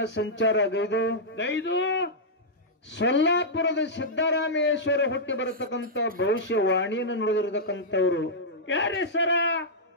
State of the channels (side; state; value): both; normal; correlation -0.10